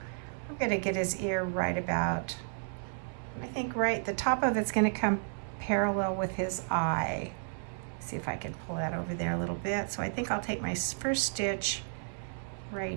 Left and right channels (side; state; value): left; silent; 56 dB below the other